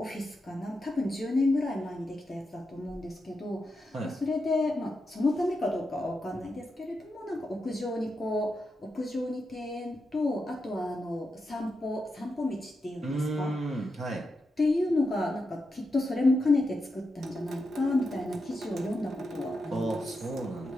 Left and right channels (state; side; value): normal; both; correlation 0.87